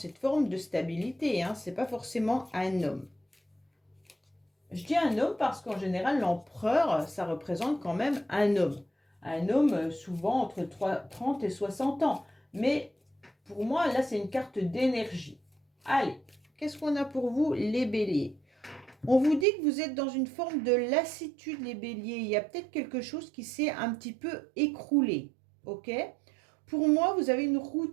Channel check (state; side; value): drops out; left; at 19.5 s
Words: forme de stabilité. C'est pas forcément un homme. Je dis un homme parce qu'en général, l'empereur, ça représente quand même un homme. Un homme souvent entre 30 et 60 ans. Mais pour moi, là, c'est une carte d'énergie. Allez, qu'est-ce qu'on a pour vous, les béliers? On vous dit que vous êtes dans une forme de lassitude, les béliers. Il y a peut-être quelque chose qui s'est un petit peu écroulé. Ok? Pour moi, vous avez une